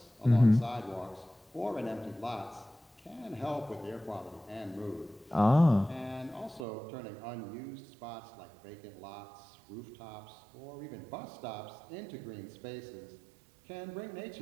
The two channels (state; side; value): drops out; left; at 6.7 s